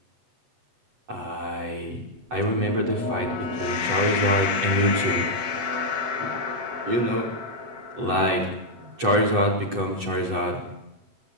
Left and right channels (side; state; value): left; late; 8.0 ms